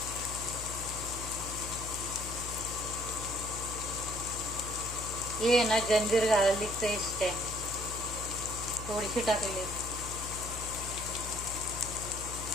हे ना जंजीर गार्लिक पेस्ट आहे, थोडीशी टाकली.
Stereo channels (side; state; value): left; noise; hum, 9 dB below the sound